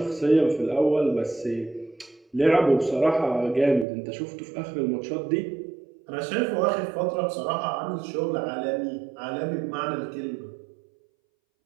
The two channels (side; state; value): left; drops out; at 3.9 s